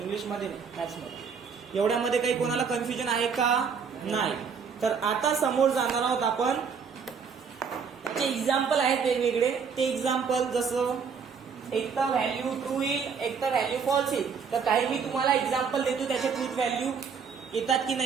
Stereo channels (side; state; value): left; quieter; 6.2 dB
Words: इंग्लिशमध्ये नाही, मॅथ्समध्ये. एवढ्यामध्ये काही कोणाला कन्फ्युजन आहे का? नाही. तर आता समोर जाणार आहोत आपण. त्याचे एक्झाम्पल आहेत वेगवेगळे. ते एक्झाम्पल जसं एक तर व्हॅल्यू ट्रू येईल, एक तर व्हॅल्यू फॉल्स येईल. तर काही मी तुम्हाला एक्झाम्पल देतो, त्याच्या ट्रूथ व्हॅल्यू येतात की